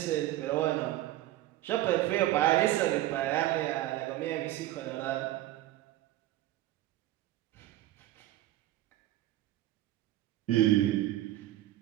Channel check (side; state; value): left; quieter; 15.1 dB